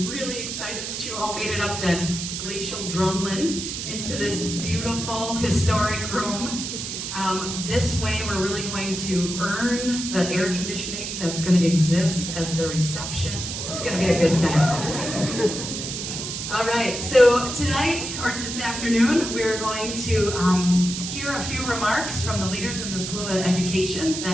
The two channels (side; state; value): right; noise; hiss, 5 dB below the sound